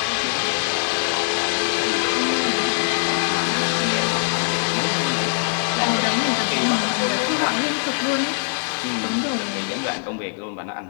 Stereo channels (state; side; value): silent; right; digital silence